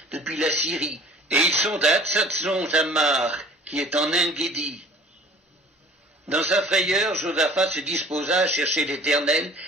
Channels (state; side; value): normal; both; correlation 0.47